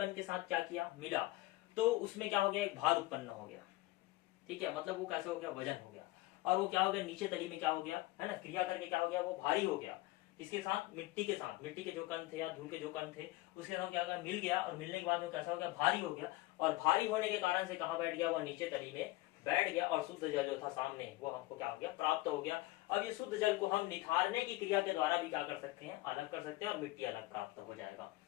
के साथ क्या किया, मिला, तो उसमें क्या हो गया, एक भार उत्पन्न हो गया, ठीक है। मतलब वो कैसे हो गया, वजन हो गया, और वो क्या हो गया, नीचे तली में क्या हो गया, है ना, क्रिया करके क्या हो गया, वो भारी हो गया। इसके साथ मिट्टी के साथ, मिट्टी के जो कण थे या धूल के जो कण थे उसके साथ क्या मिल गया, और मिलने के बाद वो कैसा हो गया, भारी हो गया। और भारी होने के कारण से कहाँ बैठ गया, वो नीचे तली में बैठ गया, और शुद्ध जल जो था सामने वो हमको क्या हो गया, प्राप्त हो गया। अब ये शुद्ध जल को हम निथारने की क्रिया के द्वारा भी क्या कर सकते हैं, अलग कर सकते हैं, और मिट्टी अलग प्राप्त हो जाएगा।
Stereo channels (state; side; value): quieter; right; 19.4 dB